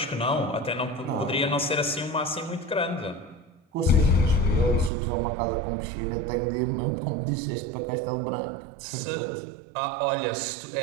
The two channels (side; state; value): left; drops out; at 4.9 s